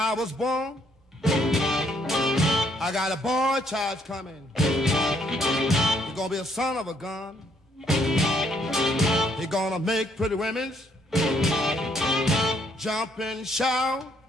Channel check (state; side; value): normal; both; correlation 0.69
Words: was born, I got a boy child coming. He's gonna be a son of a gun. He's gonna make pretty women jump and shout.